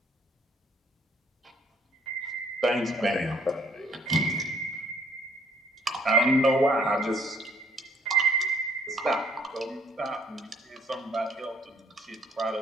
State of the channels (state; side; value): normal; both; correlation 0.63